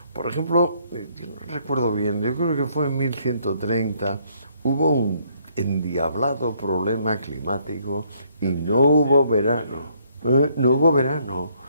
Por ejemplo, yo no recuerdo bien, yo creo que fue en 1130, hubo un endiablado problema climático y no hubo verano. No hubo verano.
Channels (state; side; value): inverted; both; correlation -0.68